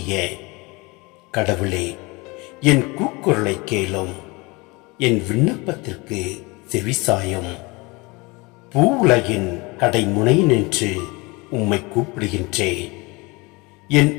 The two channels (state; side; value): quieter; right; 25.5 dB